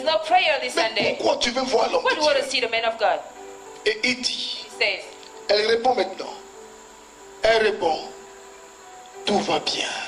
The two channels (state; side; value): identical; both; correlation 1.00